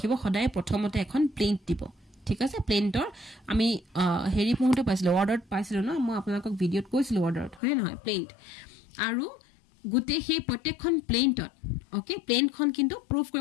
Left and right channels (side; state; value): right; drops out; at 7.6 s